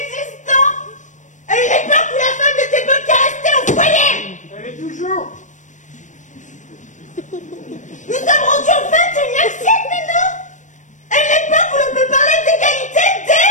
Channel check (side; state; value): right; late; 0.36 ms